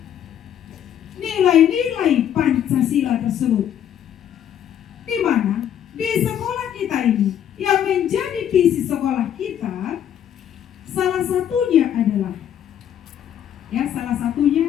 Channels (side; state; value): right; quieter; 9.9 dB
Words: nilai-nilai Pancasila tersebut, di mana di sekolah kita ini yang menjadi visi sekolah kita salah satunya adalah